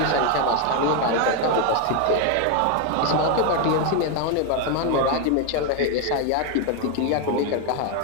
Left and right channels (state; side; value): different; both; correlation 0.01